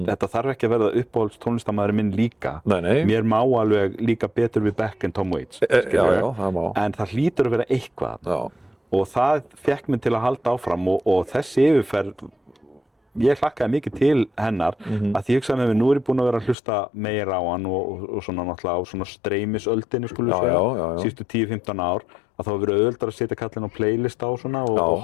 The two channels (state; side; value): drops out; right; at 16.6 s